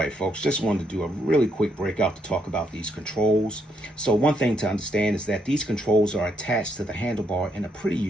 folks, just wanted to do a really quick breakout to talk about these controls. So one thing to understand is that these controls are attached to the handlebar in a pretty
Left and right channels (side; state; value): both; normal; correlation 0.75